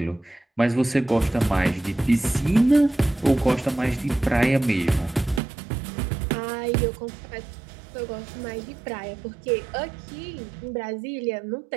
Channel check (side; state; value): left; drops out; at 5.4 s